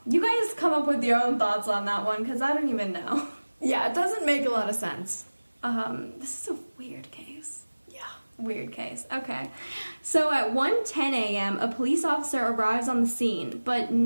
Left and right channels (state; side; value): inverted; both; correlation -1.00